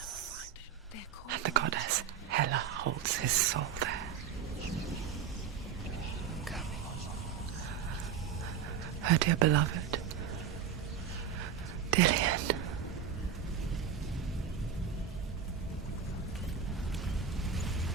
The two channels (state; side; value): quieter; left; 7.7 dB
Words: They're called and the goddess Hela holds his soul there. Her dear beloved, Dillian.